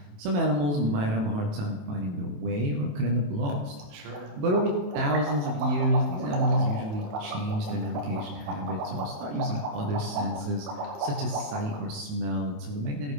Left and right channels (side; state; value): left; late; 28 ms